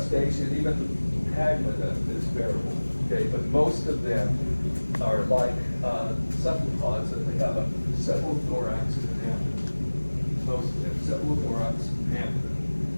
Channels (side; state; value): both; inverted; correlation -1.00